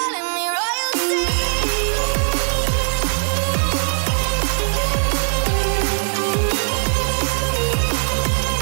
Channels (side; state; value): left; silent; 57 dB below the other